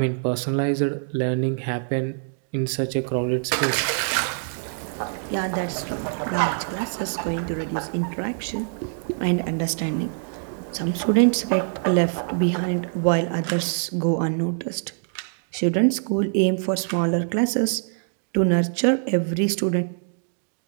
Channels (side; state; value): left; silent; digital silence